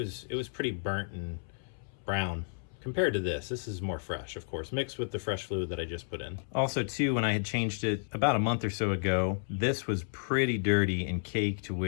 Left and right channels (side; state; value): right; silent; 56 dB below the other